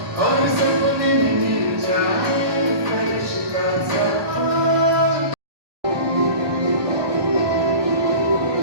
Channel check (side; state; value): left; late; 1.2 ms